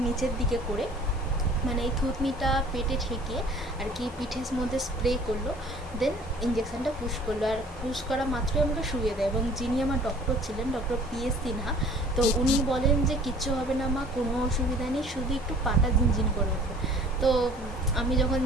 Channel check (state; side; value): normal; both; correlation 0.51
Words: নিচের দিকে করে, মানে এই থুতনিটা পেটে ঠেকিয়ে আর কি পিঠের মধ্যে স্প্রে করলো। দেন ইঞ্জেকশানটা পুশ করলো, আর পুশ করা মাত্রই আমাকে শুয়ে দেয়। এবং যিনি আমার ডক্টর ছিলেন, ডক্টর PS সিনহা, তো উনি বলেন যে কিচ্ছু হবে না মা, কোনো অসুবিধা নেই, শুধু একটু পাটা ঝিনঝিন করে ওঠে। তো আমি যখন